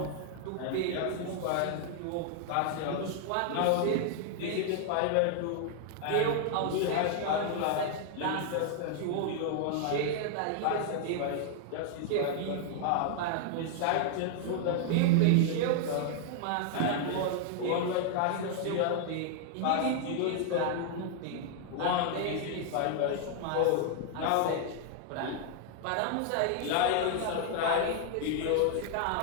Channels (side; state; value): both; different; correlation 0.00